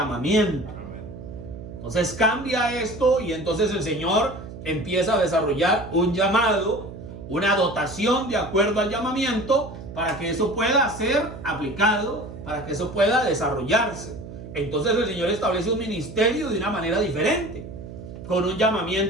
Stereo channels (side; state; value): right; noise; hum, 12 dB below the sound